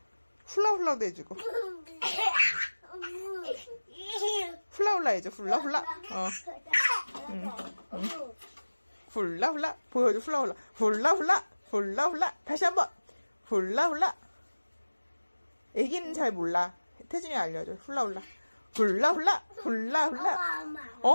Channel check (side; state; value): both; inverted; correlation -1.00